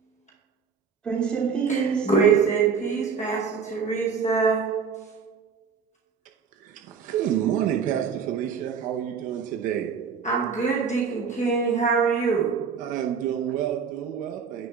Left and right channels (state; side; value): quieter; left; 6.1 dB